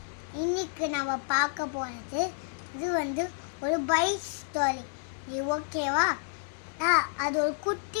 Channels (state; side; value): silent; right; 58 dB below the other